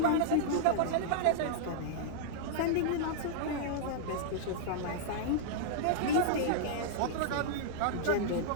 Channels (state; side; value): different; both; correlation -0.02